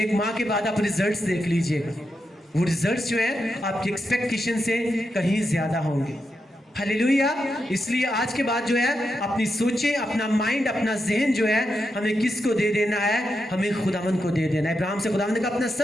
माह के बाद आप रिजल्ट्स देख लीजिएगा, वो रिजल्ट्स जो है आपकी एक्सपेक्टेशन से कहीं ज्यादा होंगे। हालेलुया। इसलिए आज के बाद जो है अपनी सोचें, अपना माइंड, अपना जहन जो है हमें किसको दे देना है? हमें खुदावंद को दे देना है। इब्राहिम से खुदावंद ने कहा अपना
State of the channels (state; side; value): normal; both; correlation 0.86